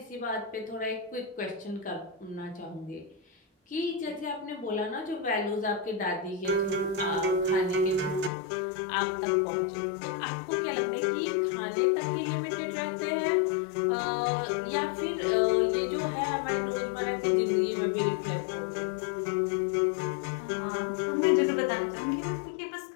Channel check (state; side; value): drops out; right; at 8.3 s